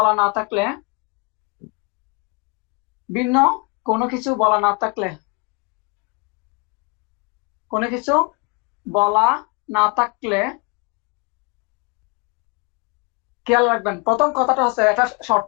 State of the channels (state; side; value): quieter; right; 30.0 dB